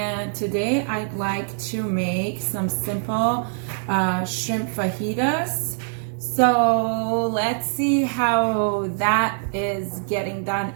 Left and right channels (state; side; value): silent; left; 63 dB below the other